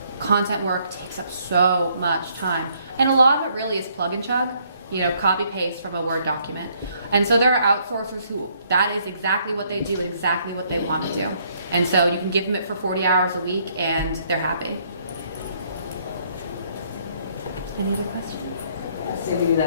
content work takes up so much time. And a lot of it really is plug and chug, you know, copy paste from a Word document. And so there are outsourcers who, that is exactly what they do and exactly what they want to do. And so you can give them it for 40 hours a week and they're happy. Any other questions? So we do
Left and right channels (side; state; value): both; inverted; correlation -0.68